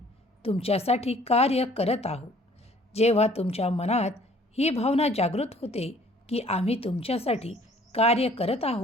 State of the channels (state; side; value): normal; both; correlation 0.57